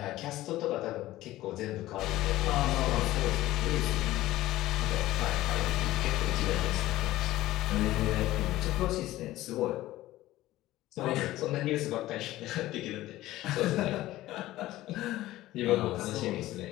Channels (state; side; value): quieter; right; 16.0 dB